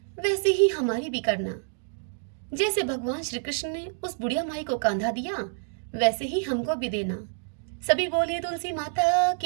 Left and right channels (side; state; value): left; silent; digital silence